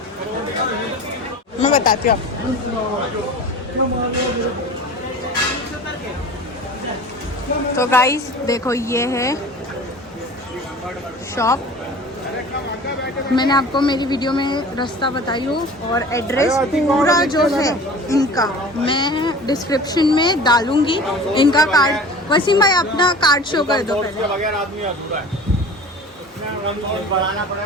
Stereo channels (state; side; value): normal; both; correlation 0.39